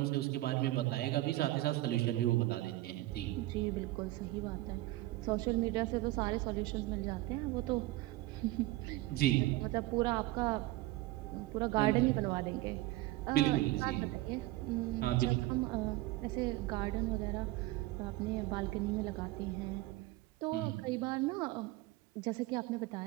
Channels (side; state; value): left; quieter; 17.9 dB